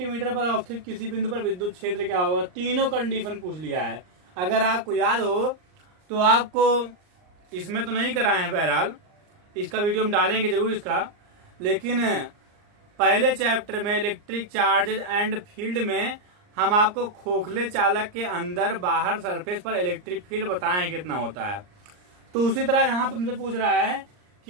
पर अवस्थित किसी बिंदु पर विद्युत क्षेत्र क्या होगा। तीनों कंडीशन पूछ लिया है। अगर आपको याद हो तो आपको इसमें तो नहीं कराए हैं, बहरहाल इसका वीडियो हम डालेंगे जरूर इसका, लेकिन पहले चैप्टर में इलेक्ट्रिक चार्जेज एंड फील्ड में हम आपको खोखले चालक के अंदर बाहर सरफेस पर इलेक्ट्रिक फील्ड बताएं कितना होता है। तो उसी तरह यहाँ पे मुझे पूछ रहा है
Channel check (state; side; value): late; left; 39 ms